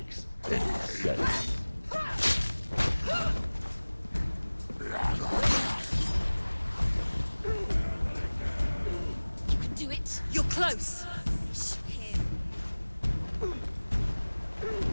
any sense. You can do it. You're close! Shoot him.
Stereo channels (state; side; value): inverted; both; correlation -1.00